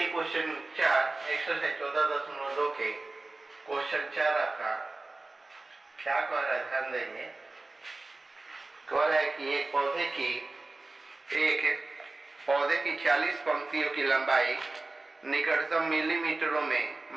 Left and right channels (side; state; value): left; quieter; 3.2 dB